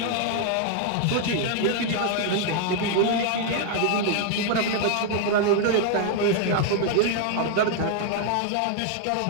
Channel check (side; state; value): both; different; correlation 0.00